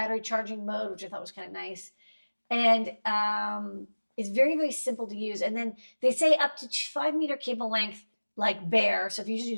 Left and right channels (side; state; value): both; inverted; correlation -1.00